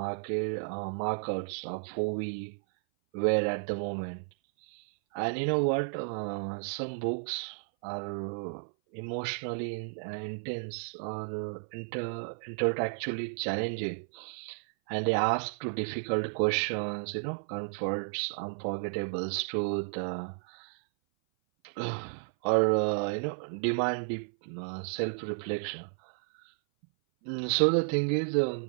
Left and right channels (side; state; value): left; silent; 56 dB below the other